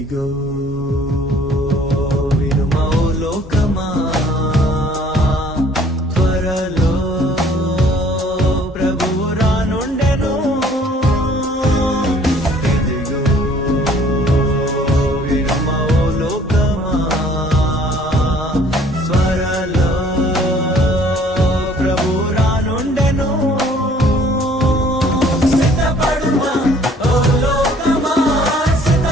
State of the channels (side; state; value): both; normal; correlation 0.57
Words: వినుమా ఓ లోకమా, త్వరలో ప్రభువు రానుండెను. ఇదిగో వినుమా ఓ లోకమా, త్వరలో ప్రభువు రానుండెను. సిద్ధపడుమా ఓ లోకమా,